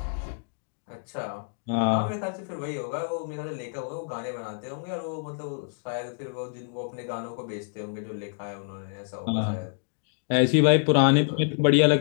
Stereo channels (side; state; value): right; silent; digital silence